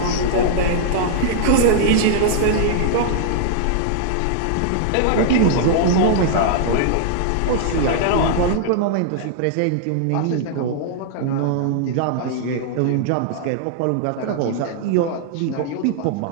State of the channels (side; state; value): both; different; correlation -0.01